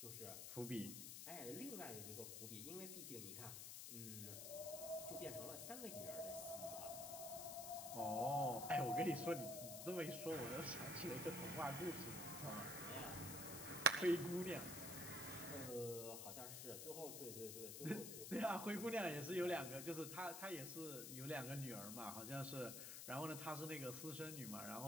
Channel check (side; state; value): left; noise; hiss, 6 dB below the sound